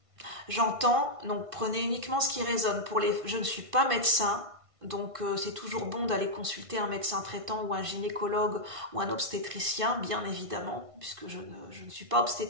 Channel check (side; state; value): left; late; 1.5 ms